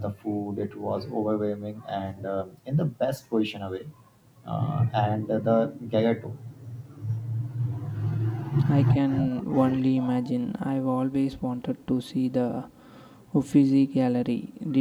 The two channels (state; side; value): identical; both; correlation 1.00